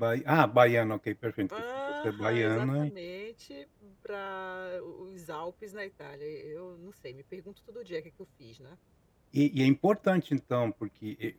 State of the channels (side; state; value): both; identical; correlation 1.00